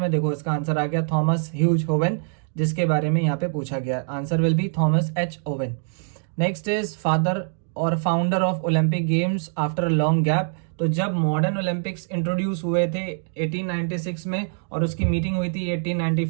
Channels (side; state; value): left; silent; digital silence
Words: देखो इसका आंसर आ गया थॉमस ह्यूज ओवन, जिसके बारे में यहाँ पे पूछा गया। Answer will be Thomas H Owen. Next is father और founder of Olympic games after a long gap. तो जब मॉडर्न ओलंपिक्स इंट्रोड्यूस हुए थे 1896 में और उसकी मीटिंग हुई थी